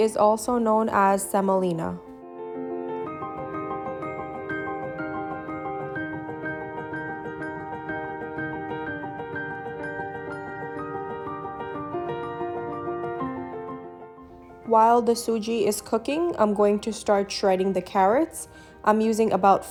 also known as semolina. While the Suji is cooking, I'm going to start shredding the carrots. I'm using about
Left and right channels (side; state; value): both; identical; correlation 1.00